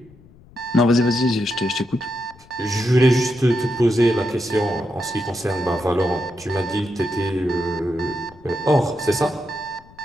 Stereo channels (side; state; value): left; noise; rumble, 25 dB below the sound